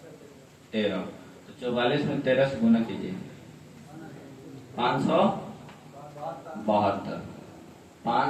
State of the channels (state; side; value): identical; both; correlation 1.00